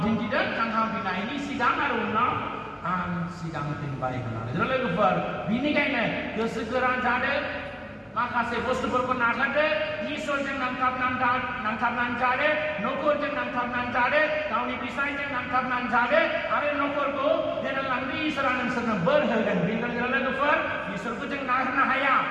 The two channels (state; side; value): identical; both; correlation 1.00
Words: दिन्थिदों थांखांफिननायनि सिगां आरो उनाव आं सिगांफिनबाय होननानै लोगोफोर बेनिखायनो गोसो गोरा जादों माखासे बुस्थुफोरखौ नागारदो इसोरजों नांथाबनानै जादो न'खरजों नांथाबनानै जादो गावनि बिसायजों नांथाबनानै जादो आरो न'खरखौ दैदेनलांनो इसोरा नोंसोरनो बोर होगोन बेनिखायनो लोगोफोर इसोरखौ जों नागारनो हाया